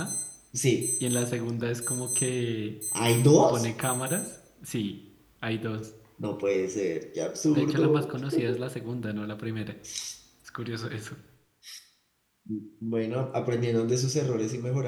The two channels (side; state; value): both; identical; correlation 1.00